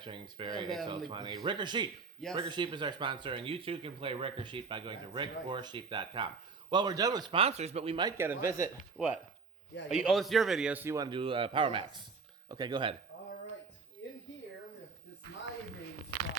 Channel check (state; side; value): quieter; left; 4.6 dB